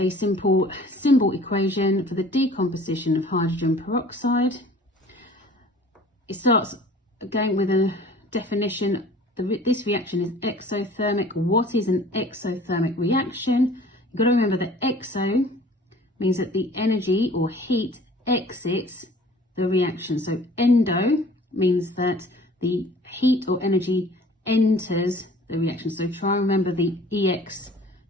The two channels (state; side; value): normal; both; correlation 0.49